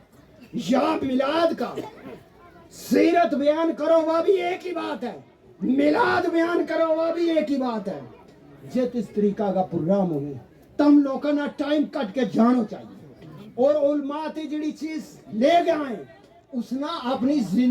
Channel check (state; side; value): identical; both; correlation 1.00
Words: या मिलाद का, सीरत बयान करो वह भी एक ही बात है, मिलाद बयान करो वह भी एक ही बात है। जिस इस तरीका का प्रोग्राम होगी तम लोगों ना टाइम कट के जानो चाहिए, और उलमा ते जड़ी चीज ले गए उसना अपनी